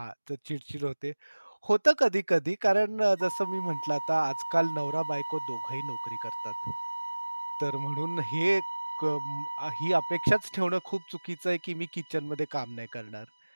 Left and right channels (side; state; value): both; inverted; correlation -1.00